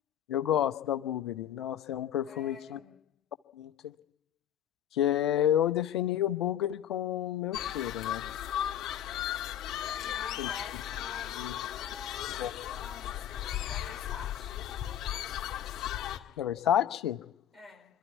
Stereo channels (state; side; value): quieter; right; 10.7 dB